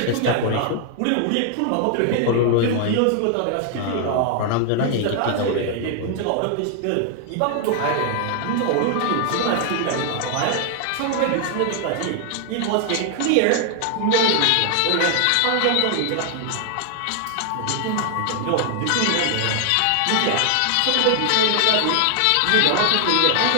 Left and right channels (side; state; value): both; different; correlation 0.00